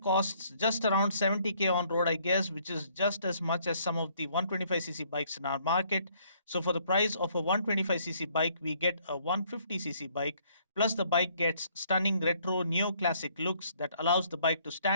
costs just around 70k on road, I guess, which is just as much as some of the 125cc bikes in our market. So, for the price of a 125cc bike, we get a 150cc bike. Plus, the bike gets stunning retro neoclassic looks that allows the bike to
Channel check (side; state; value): both; inverted; correlation -0.64